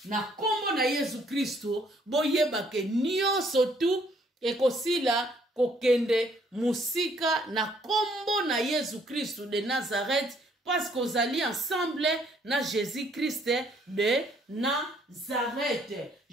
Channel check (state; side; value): normal; both; correlation 0.65